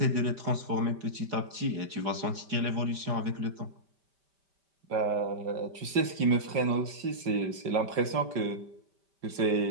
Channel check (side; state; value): left; late; 5.1 ms